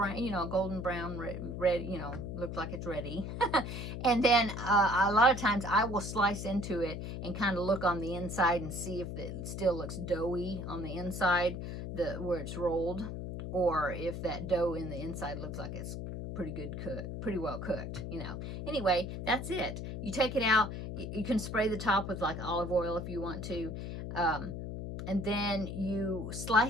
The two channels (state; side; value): noise; left; hum, 6 dB below the sound